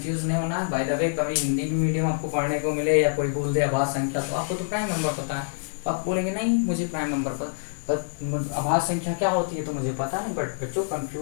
नहीं होना है। बाय द वे कभी हिंदी भी मीडियम आपको पढ़ने को मिले या कोई बोल दे आभास संख्या, तो आपको तो प्राइम नंबर पता है, तो आप बोलेंगे नहीं मुझे प्राइम नंबर पर आभास संख्या क्या होती है तो मुझे पता नहीं। बट बच्चों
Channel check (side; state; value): right; silent; digital silence